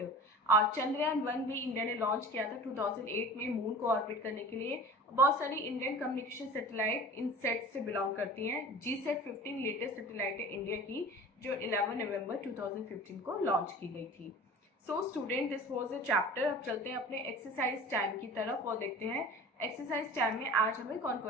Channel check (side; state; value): both; normal; correlation 0.40